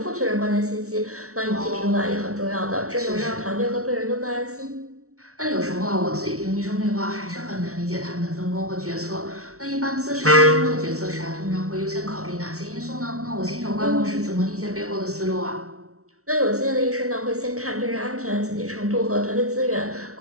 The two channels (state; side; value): late; left; 0.64 ms